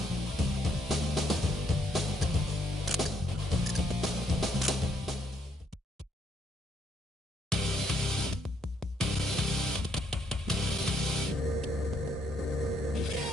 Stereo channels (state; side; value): normal; both; correlation 0.73